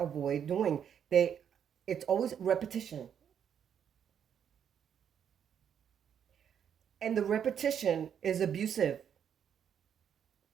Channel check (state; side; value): quieter; left; 8.4 dB